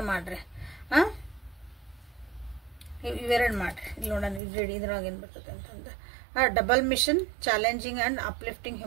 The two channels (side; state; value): left; drops out; at 4.4 s